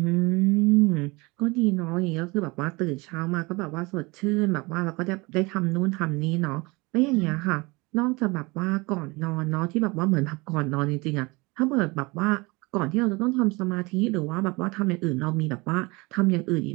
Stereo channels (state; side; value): quieter; left; 25.2 dB